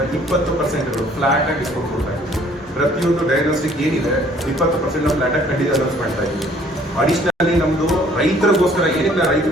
20% ಫ್ಲಾಟ್ ಆಗಿ ಡಿಸ್ಕೌಂಟ್ ಕೊಡ್ತಾ ಇದ್ದೀವಿ. ಪ್ರತಿಯೊಂದು ಡಯಾಗ್ನೋಸ್ಟಿಕ್ ಏನಿದೆ 20% ಫ್ಲಾಟ್ ಆಗಿ ಖಂಡಿತ ಅನೌನ್ಸ್ ಮಾಡ್ತಾ ಇದ್ದೀವಿ. ಅಡಿಷನಲಿ ನಮ್ಮದು ರೈತರಿಗೋಸ್ಕರ ಏನಕ್ಕೆ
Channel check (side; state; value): both; normal; correlation 0.58